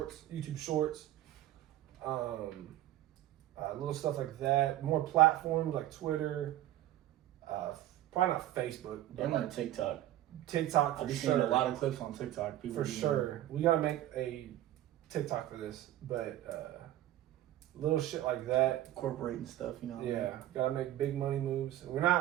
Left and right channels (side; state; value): left; quieter; 13.8 dB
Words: YouTube shorts, little stuff like that. More platforms like Twitter, probably not Facebook, but I'm on TikTok. TikTok I've for seen a sure. lot of clips on TikTok. People For doing sure, we gotta make a TikTok for this, but little shit like that. incorporating stuff. You know. What I mean? Yeah, gotta make big money moves. We're